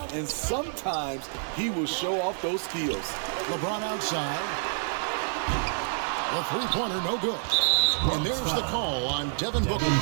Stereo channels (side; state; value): left; silent; digital silence